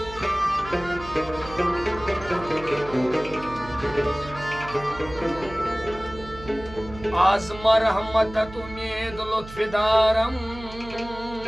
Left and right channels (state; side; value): noise; right; hum, 15 dB below the sound